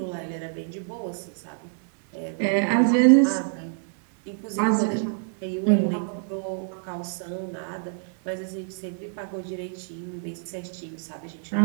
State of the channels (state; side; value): silent; left; 61 dB below the other